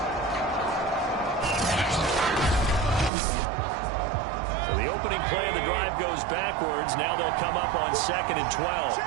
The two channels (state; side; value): drops out; left; at 3.1 s